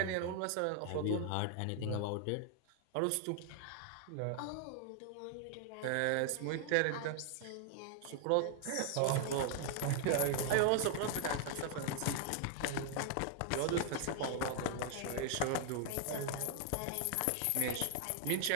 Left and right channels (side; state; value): both; different; correlation 0.00